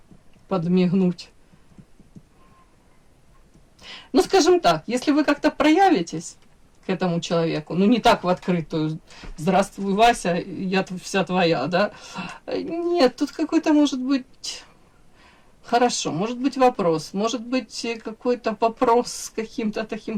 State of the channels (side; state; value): both; identical; correlation 1.00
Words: подмигнуть. Ну, скажем так, если вы как-то проявитесь к этому человеку, ну, не так в открытую: «Здравствуй, Вася, я вся твоя», да? Нет, тут какой-то, может быть, хорошо, может быть вопрос, может быть какой-то вопрос с каким-то